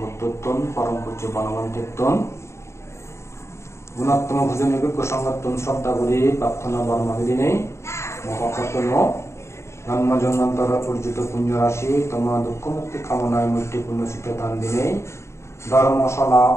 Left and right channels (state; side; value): late; right; 0.13 ms